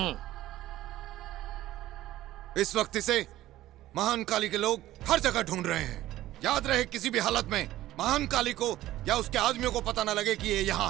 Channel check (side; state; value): left; quieter; 14.9 dB